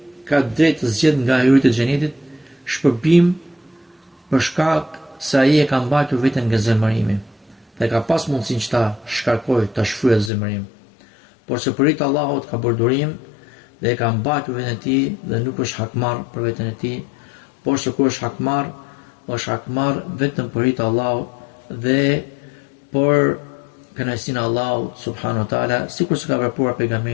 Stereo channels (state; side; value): drops out; right; at 10.3 s